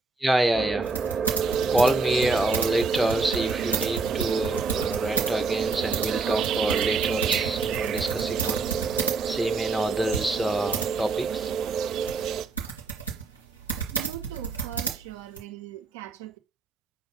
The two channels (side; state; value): left; quieter; 3.8 dB